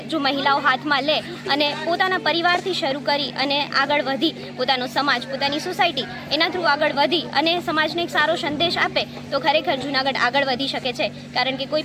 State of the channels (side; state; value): both; identical; correlation 1.00